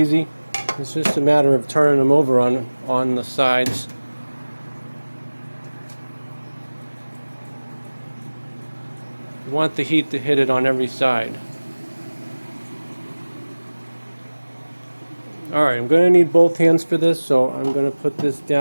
It's just a matter of turning them over on the sides. You want the heat to hit it on every side. Alright, I'm going to need both hands for this, so I'm going to put this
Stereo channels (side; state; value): both; inverted; correlation -1.00